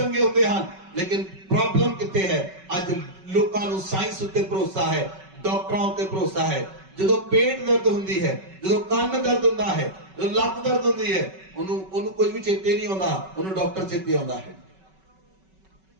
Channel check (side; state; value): left; late; 5.3 ms